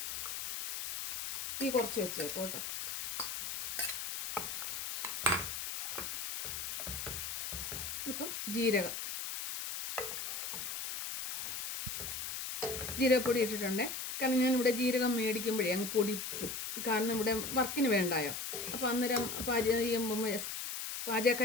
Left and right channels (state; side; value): noise; left; hiss, 4 dB below the sound